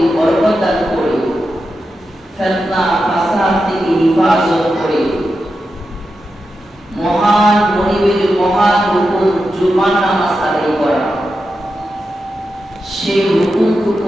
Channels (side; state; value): both; normal; correlation 0.89